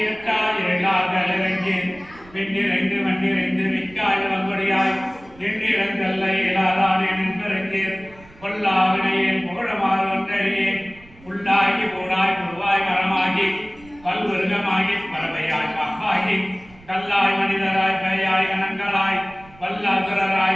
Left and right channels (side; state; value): right; noise; rumble, 24 dB below the sound